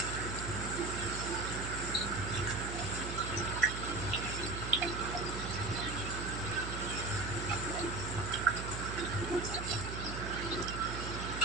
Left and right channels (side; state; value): right; noise; hum, 5 dB below the sound